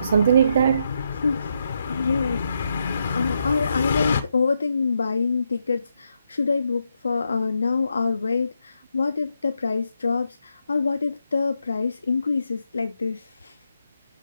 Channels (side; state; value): both; inverted; correlation -0.81